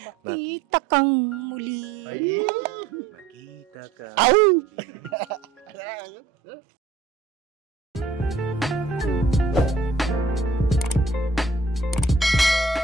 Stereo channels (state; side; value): quieter; left; 4.1 dB